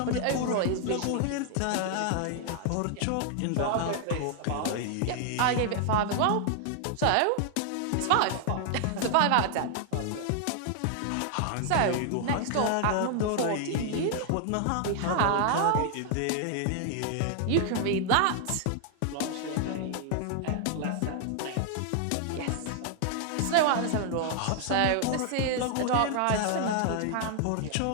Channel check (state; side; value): different; both; correlation 0.00